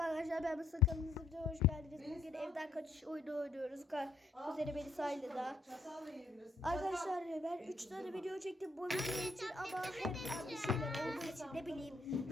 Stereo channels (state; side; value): quieter; right; 3.1 dB